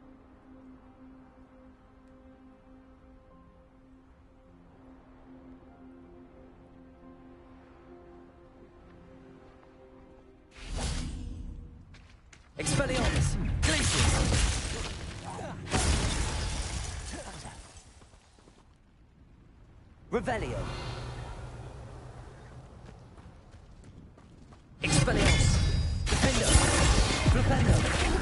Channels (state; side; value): identical; both; correlation 1.00